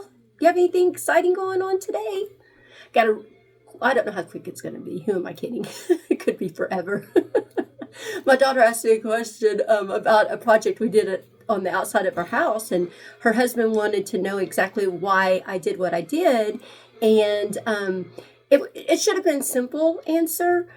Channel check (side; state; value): both; identical; correlation 1.00